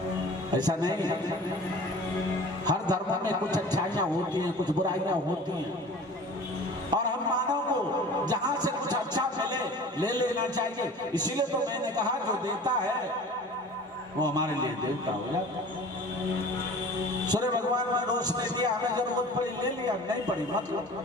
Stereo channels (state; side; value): normal; both; correlation 0.42